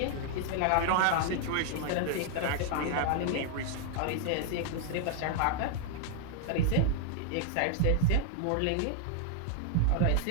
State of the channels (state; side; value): different; both; correlation 0.00